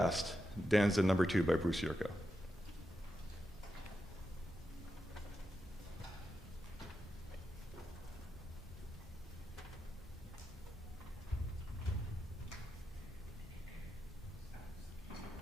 Danza No. 2 by Bruce Yurko.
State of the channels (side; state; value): both; normal; correlation 0.87